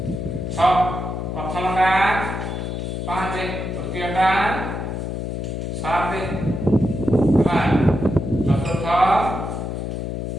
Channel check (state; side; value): noise; left; hum, 4 dB below the sound